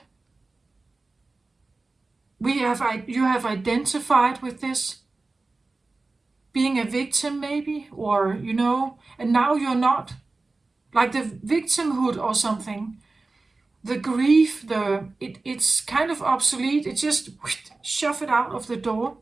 You have identified with this, being a victim maybe, or, and now you're not. Like the victimhood or something, the grief, it's kind of obsolete. It just shove it out of the door,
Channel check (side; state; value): left; quieter; 3.5 dB